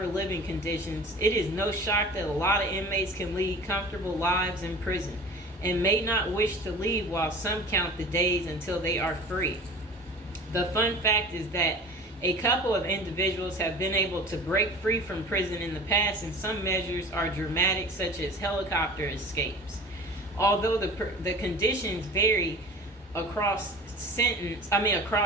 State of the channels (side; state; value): both; normal; correlation 0.40